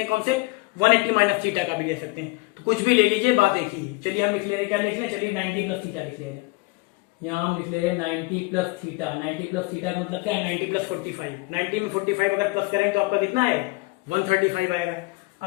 कॉन्सेप्ट, 180 माइनस थीटा का भी ले सकते हैं, तो कुछ भी ले लीजिए, बात एक ही है। चलिए हम लिख ले रहे हैं, क्या लिख रहे हैं, चलिए 90 प्लस थीटा लिख ले रहे हैं। यहाँ हम लिख ले रहे हैं 90 प्लस थीटा, 90 प्लस थीटा का मतलब क्या है, 90 प्लस 45, 90 में 45 अगर प्लस करेंगे तो आपका कितना आएगा, 135 आएगा।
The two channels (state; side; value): quieter; right; 22.9 dB